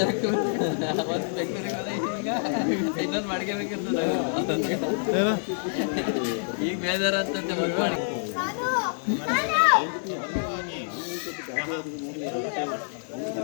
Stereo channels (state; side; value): silent; right; 60 dB below the other